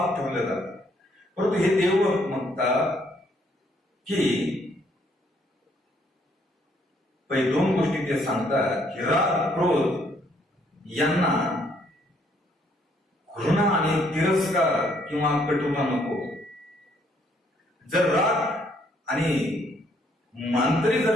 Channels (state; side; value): normal; both; correlation 0.68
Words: ठेवलं जातं. परंतु हे देवभक्त म्हणतात की पहिले दोन गोष्टी ते सांगतात की राग, क्रोध यांना घृणा आणि तिरस्कार किंवा कटुता नको. जर राग आणि मांतरी